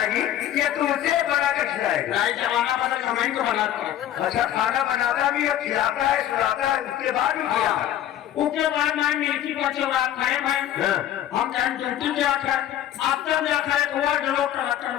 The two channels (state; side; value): quieter; right; 11.7 dB